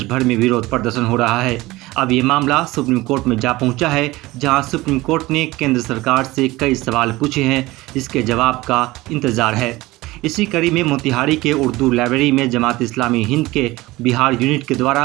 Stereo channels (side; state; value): left; quieter; 19.5 dB